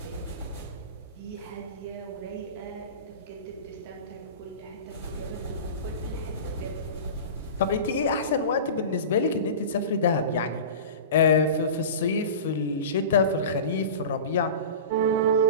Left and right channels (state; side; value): inverted; both; correlation -0.32